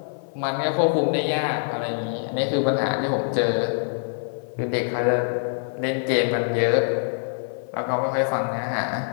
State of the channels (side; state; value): right; silent; 60 dB below the other